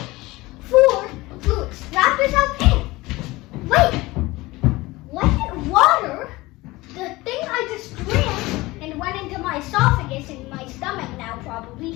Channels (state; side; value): quieter; right; 20.6 dB